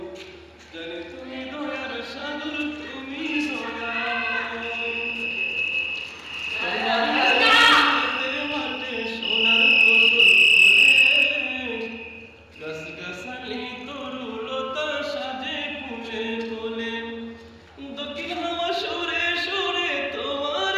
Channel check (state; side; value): identical; both; correlation 1.00